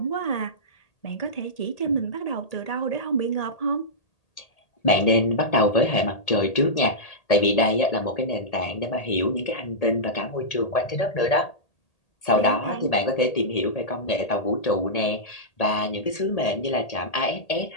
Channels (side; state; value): right; late; 1.8 ms